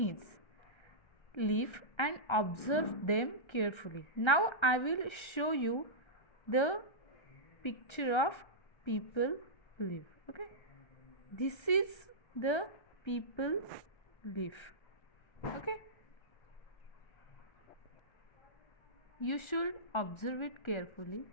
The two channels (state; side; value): late; right; 1.3 ms